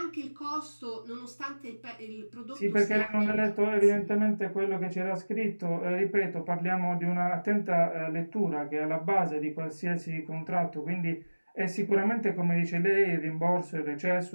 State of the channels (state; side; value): inverted; both; correlation -1.00